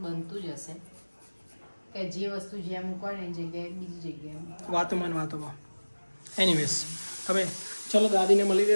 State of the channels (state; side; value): inverted; both; correlation -1.00